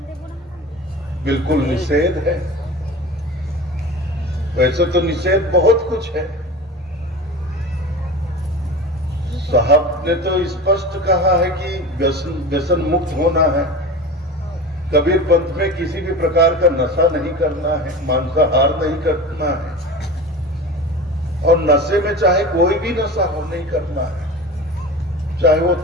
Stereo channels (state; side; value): normal; both; correlation 0.32